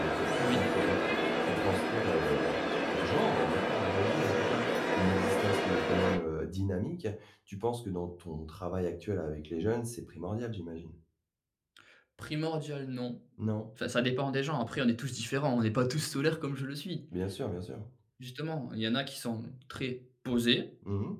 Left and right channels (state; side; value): identical; both; correlation 1.00